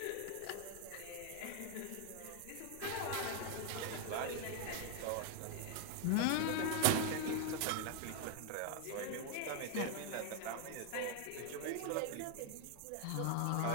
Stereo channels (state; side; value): different; both; correlation 0.00